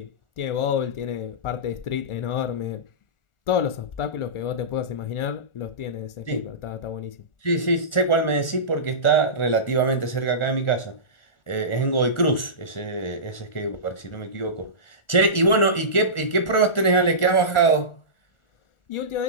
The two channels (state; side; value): late; right; 1.4 ms